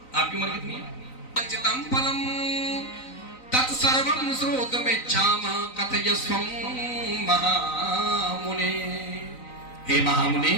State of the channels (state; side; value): late; right; 3.9 ms